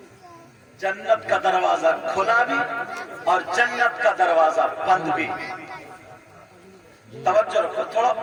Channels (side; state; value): both; identical; correlation 1.00